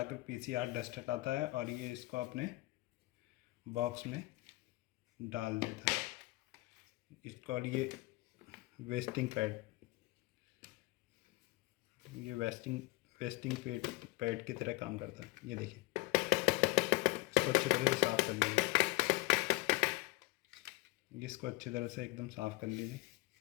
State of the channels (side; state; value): right; quieter; 20.9 dB